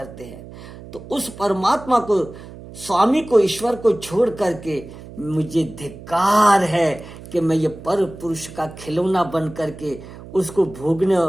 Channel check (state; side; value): noise; right; hum, 16 dB below the sound